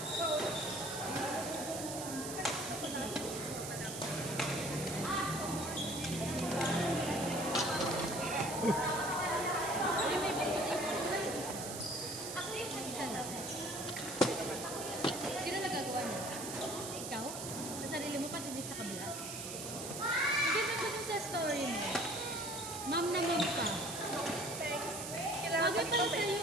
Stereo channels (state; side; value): noise; right; hiss, 7 dB below the sound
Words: Sino nagagawa niya? Ikaw? Sa sarili mo, pati din sa kabila? Ang ganda ko dun sa story mo. Ma'am na ma'am ka. Bagay pala sa'yo